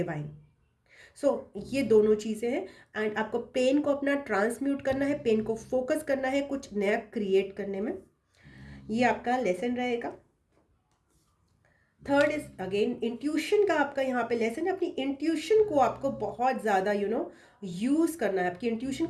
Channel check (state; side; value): identical; both; correlation 1.00